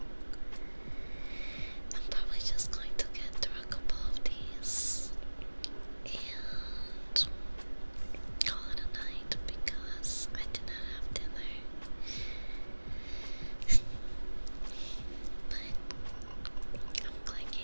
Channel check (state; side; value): inverted; both; correlation -1.00